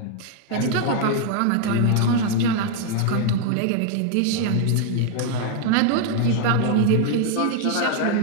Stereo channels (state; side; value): different; both; correlation 0.00